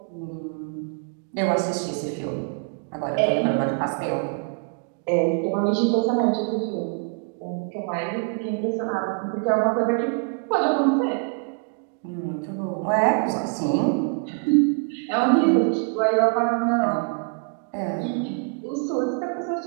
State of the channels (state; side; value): quieter; left; 39.7 dB